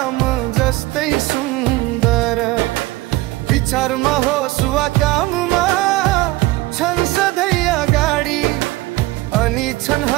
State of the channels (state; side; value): quieter; left; 19.4 dB